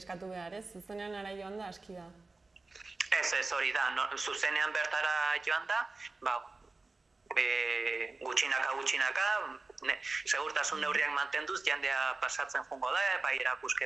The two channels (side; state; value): left; quieter; 3.5 dB